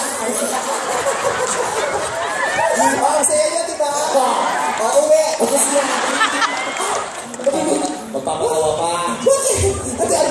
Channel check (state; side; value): identical; both; correlation 1.00